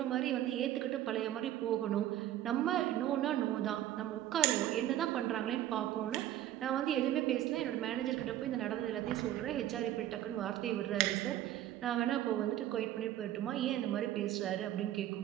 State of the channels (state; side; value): quieter; left; 12.9 dB